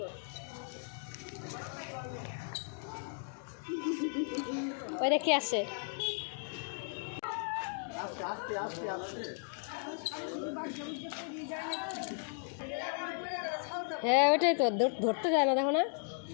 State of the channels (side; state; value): right; silent; 54 dB below the other